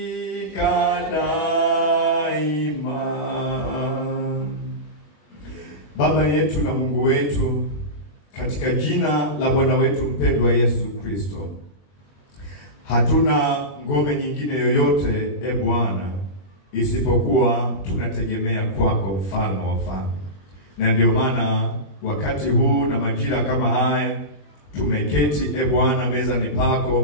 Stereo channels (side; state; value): right; late; 21 ms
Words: daima. Baba yetu na Mungu wetu, katika jina la Bwana wetu mpendwa Yesu Kristo, hatuna ngome nyingine yoyote Bwana isipokuwa tunategemea kwako, mfalme wa wafalme. Na ndio maana wakati huu na majira kama haya tumeketi Bwana mezani